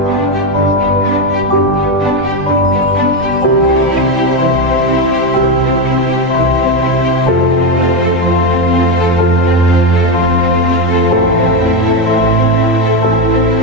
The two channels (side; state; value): both; normal; correlation 0.10